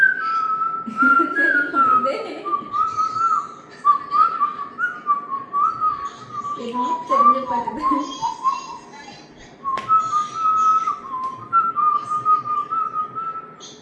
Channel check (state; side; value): identical; both; correlation 1.00